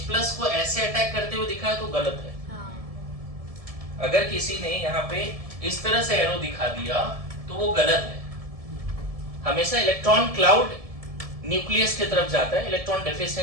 को ऐसे अटैक करते हुए दिखाया तो गलत है। अगर किसी ने यहाँ पे इस तरह से एरो दिखा दिया तो वो गलत है। हमेशा इलेक्ट्रॉन क्लाउड न्यूक्लियस की तरफ जाता है, इलेक्ट्रॉन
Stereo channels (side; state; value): left; late; 1.7 ms